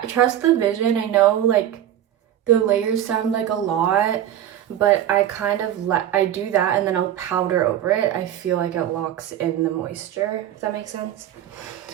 trust the vision. I know like the layers sound like a lot, but I kind of I do that and then I'll powder over it. I feel like it locks in the moisture, if that makes sense.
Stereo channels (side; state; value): left; quieter; 11.2 dB